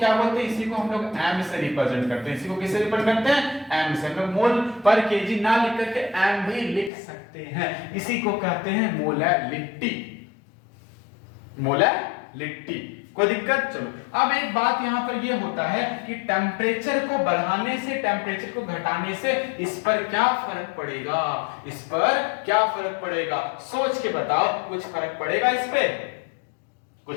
बोलते हैं, इसी को हम लोग एम से रिप्रेजेंट करते हैं। इसी को किससे रिप्रेजेंट करते हैं, एम से। हम लोग मोल पर केजी ना लिख करके एम भी लिख सकते हैं। इसी को कहते हैं मोलैलिटी, मोलैलिटी। कोई दिक्कत? चलो अब एक बात यहां पर ये होता है कि टेम्परेचर को बढ़ाने से टेम्परेचर को घटाने से इस पर क्या फर्क पड़ेगा, इस पर क्या फर्क पड़ेगा, सोच के बताओ। कुछ फर्क पड़ेगा इस पे,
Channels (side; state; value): right; drops out; at 6.9 s